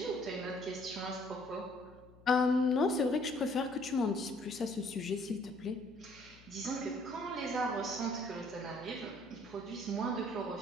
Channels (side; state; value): left; noise; hum, 23 dB below the sound